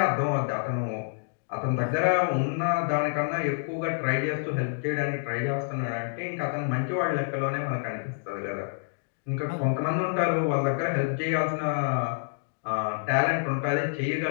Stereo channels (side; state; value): right; silent; digital silence